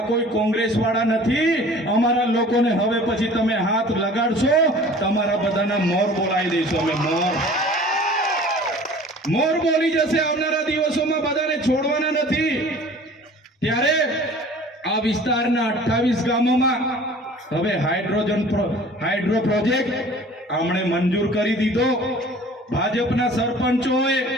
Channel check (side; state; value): both; normal; correlation 0.46